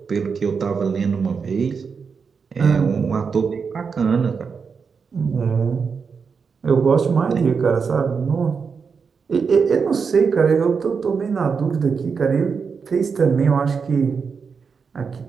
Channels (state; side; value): quieter; left; 5.7 dB